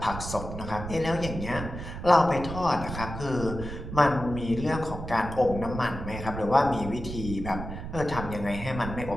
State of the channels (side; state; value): right; noise; rumble, 8 dB below the sound